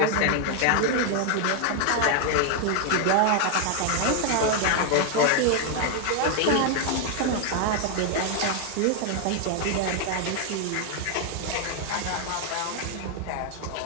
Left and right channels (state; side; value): different; both; correlation 0.00